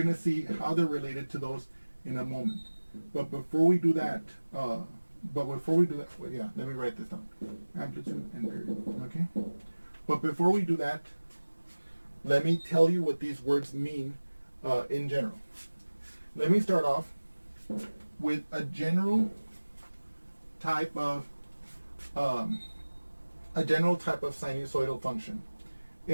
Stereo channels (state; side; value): inverted; both; correlation -1.00